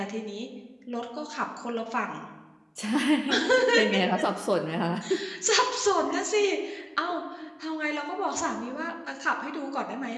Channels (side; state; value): both; identical; correlation 1.00